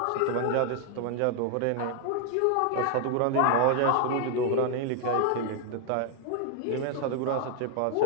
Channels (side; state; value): both; different; correlation 0.00